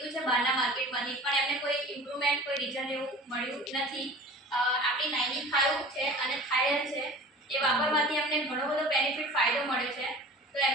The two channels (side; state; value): both; normal; correlation 0.41